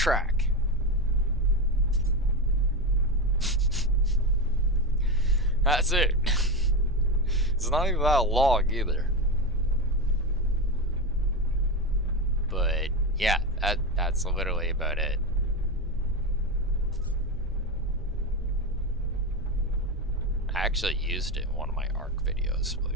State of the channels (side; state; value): both; normal; correlation 0.16